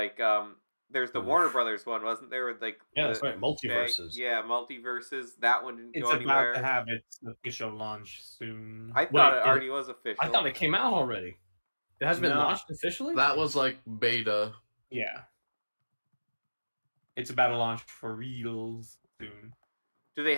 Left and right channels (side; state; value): both; inverted; correlation -1.00